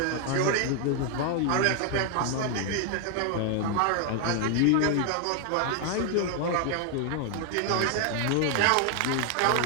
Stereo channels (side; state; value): both; different; correlation 0.00